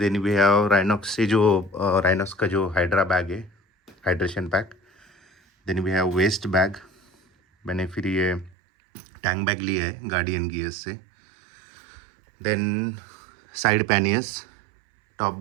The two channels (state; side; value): drops out; left; at 8.6 s